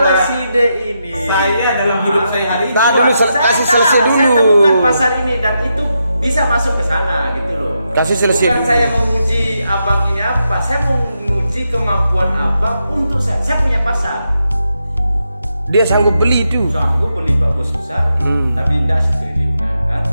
kita- si D ini Saya dalam hidup saya hari ini Nah, dulu Saya kasih tahu, selesai Saya dulu. temukan pasar ini dan itu bisa masuk ke sana gitu loh. Kasih selesai Bukan dulu. saya menguji abang ini apa, saya mau menguji kemampuan abang untuk saya. Saya punya pasar. Dia sanggup beli itu. Sanggup beli Pak Bos besar, tapi tidak setriliunan kan.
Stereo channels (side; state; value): both; inverted; correlation -0.84